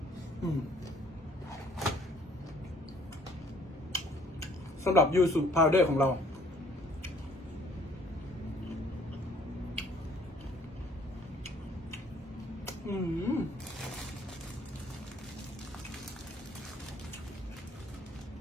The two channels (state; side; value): normal; both; correlation 0.59